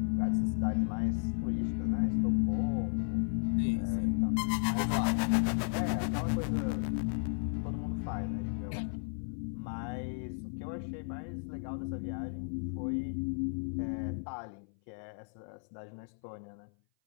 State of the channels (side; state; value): right; silent; 55 dB below the other